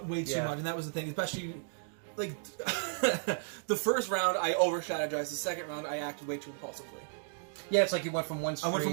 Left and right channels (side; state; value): left; silent; digital silence